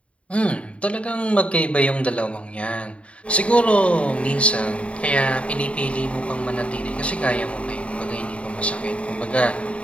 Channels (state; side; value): late; right; 0.062 ms